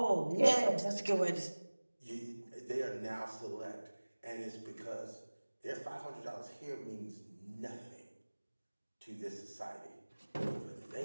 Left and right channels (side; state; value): both; inverted; correlation -1.00